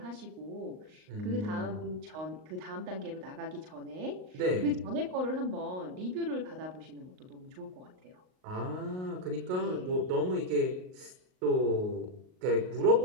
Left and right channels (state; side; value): late; left; 38 ms